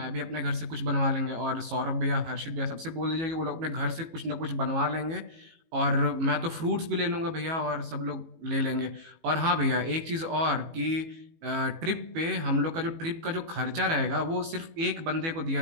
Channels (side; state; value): left; late; 18 ms